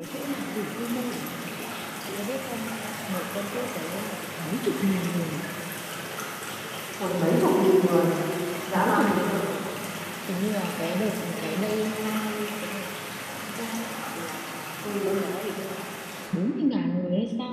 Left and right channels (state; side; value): identical; both; correlation 1.00